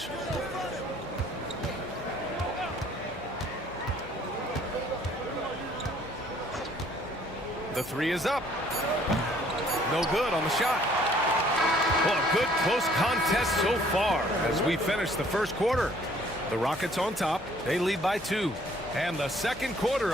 The 3 is up. No good on the shot. Well, a good close contest so far as we finish the first quarter. The Rockets on top. They lead by 2. And the second quarter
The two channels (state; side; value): noise; left; hum, 18 dB below the sound